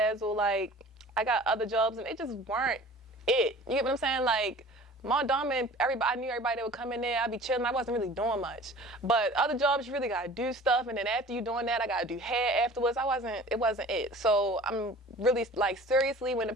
like, I got other jobs, and they just weren't it. You get what I'm saying? Like, Maldon, I knew everybody that would come in there. I'd be chilling. I wasn't really doing much. But other jobs, you really got to do stuff. And then after you doing that, I got to do hair afterwards. It wasn't it. So I'm really, like, seriously, when the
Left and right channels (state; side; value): normal; both; correlation 0.44